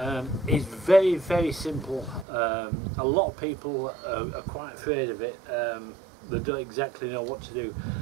It's very simple. A lot of people are quite afraid of it. They don't exactly know what to do.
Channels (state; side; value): drops out; left; at 2.2 s